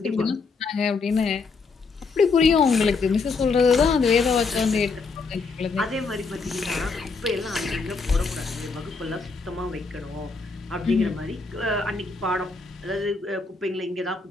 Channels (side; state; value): right; quieter; 4.4 dB